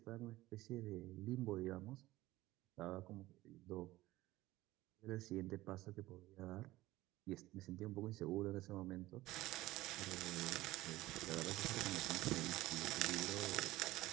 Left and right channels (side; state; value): left; quieter; 17.5 dB